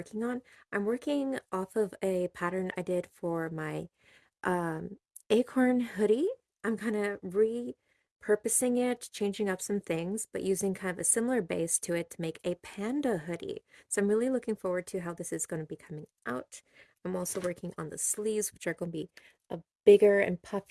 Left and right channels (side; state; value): both; identical; correlation 1.00